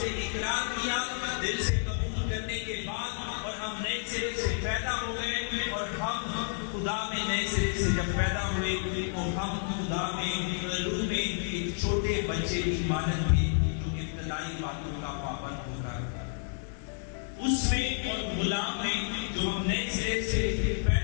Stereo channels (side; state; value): right; silent; digital silence